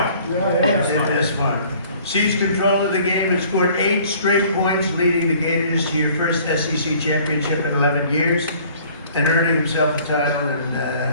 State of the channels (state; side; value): inverted; both; correlation -0.54